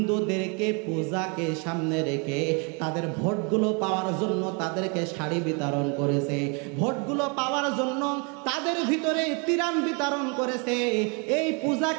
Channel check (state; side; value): quieter; left; 34.0 dB